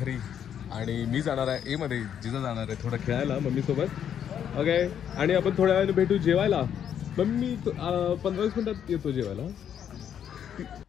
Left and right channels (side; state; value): right; quieter; 9.0 dB